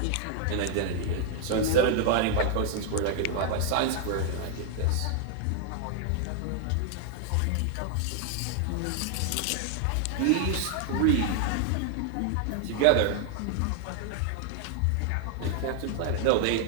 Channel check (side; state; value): both; different; correlation 0.00